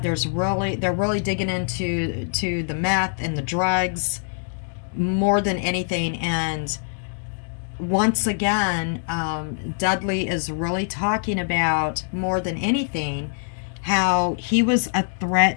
they're really digging into the meth and the drugs more than anything. And once again, Dudley is really talking about, more than anything, how he was a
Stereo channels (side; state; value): right; silent; digital silence